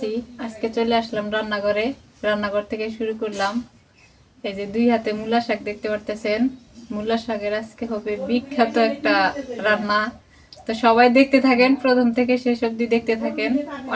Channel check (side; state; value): both; identical; correlation 1.00